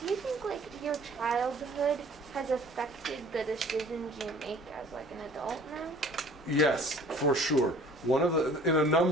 you think your childhood has affected the decisions you make as an adult now? Yes, for sure. In a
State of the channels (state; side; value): normal; both; correlation 0.50